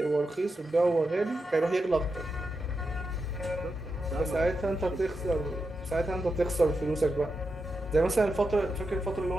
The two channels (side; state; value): both; normal; correlation 0.88